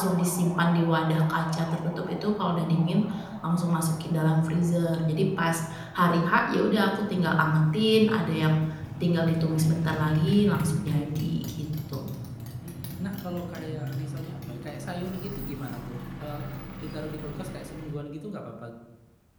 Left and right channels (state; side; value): identical; both; correlation 1.00